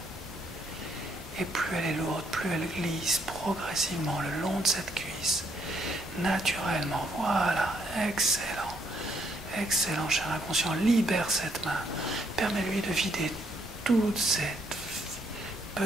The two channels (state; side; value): normal; both; correlation 0.72